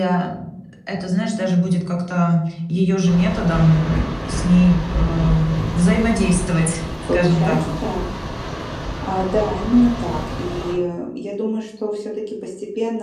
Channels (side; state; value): both; identical; correlation 1.00